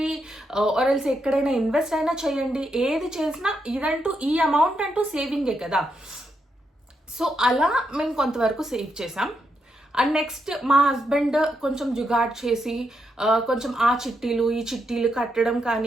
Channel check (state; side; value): normal; both; correlation 0.81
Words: ఆర్ఎల్స్ ఎక్కడైనా ఇన్వెస్ట్ అయినా చేయండి, ఏది చేసినా ఇదంటూ ఈ అమౌంట్ అంటూ సేవింగే కదా. సో అలా మేము కొంతవరకు సేవ్ చేసాం. అండ్ నెక్స్ట్ మా హస్బెండ్ కొంచెం జుగాడ్ చేసి కొంచెం ఆ చిట్టీలు ఈ చిట్టీలు కట్టడం